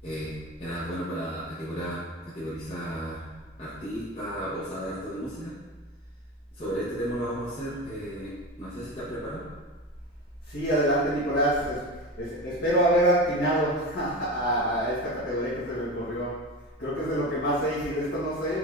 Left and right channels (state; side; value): normal; both; correlation 0.27